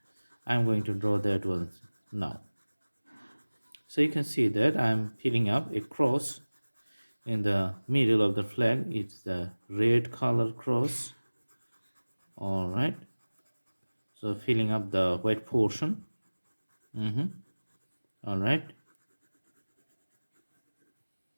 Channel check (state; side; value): inverted; both; correlation -1.00